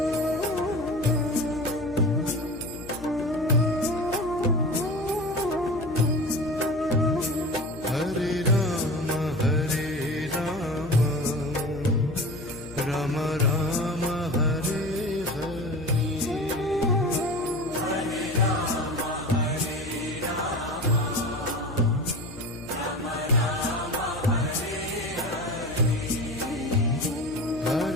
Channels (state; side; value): noise; left; hum, 15 dB below the sound